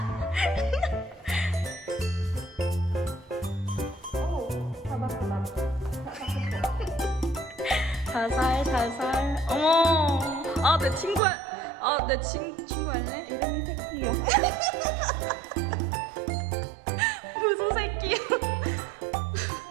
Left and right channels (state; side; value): drops out; left; at 11.2 s